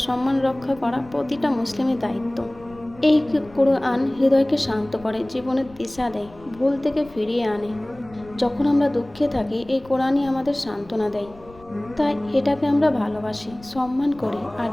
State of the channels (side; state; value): left; noise; rumble, 22 dB below the sound